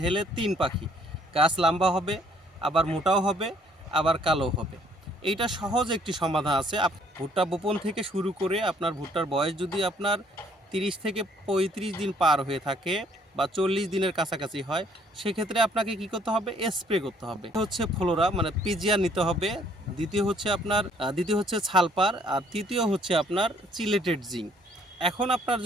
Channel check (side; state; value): both; normal; correlation 0.62